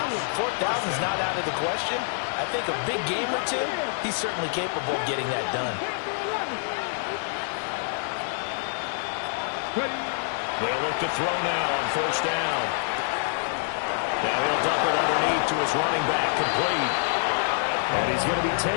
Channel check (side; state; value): right; silent; digital silence